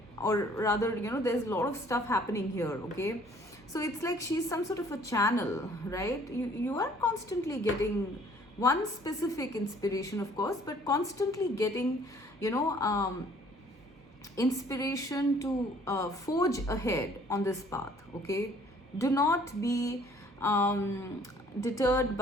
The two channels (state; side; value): normal; both; correlation 0.58